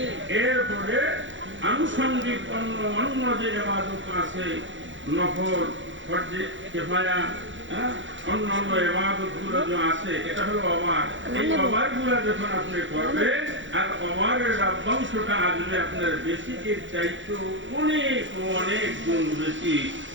এরপরে আনুষঙ্গিক অন্য যে ইবাদত আছে, নফল, ফরজে কিফায়া, অন্যান্য ইবাদতগুলো যে আছে, এটা হলো ওভার। এই ওভারগুলো যখন আপনি করবেন আর ওভারের লভ্যাংশটা আসবে আপনার বেসিকের চাইতে অনেক অনেক গুণ বেশি।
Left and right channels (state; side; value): late; left; 0.55 ms